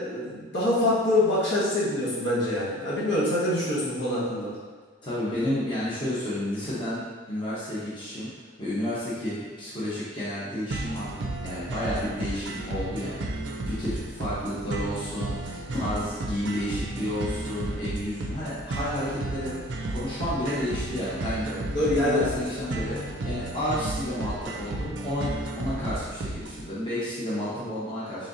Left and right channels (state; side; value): normal; both; correlation 0.50